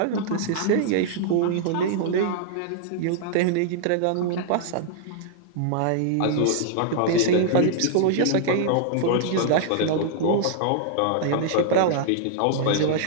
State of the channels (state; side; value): different; both; correlation -0.01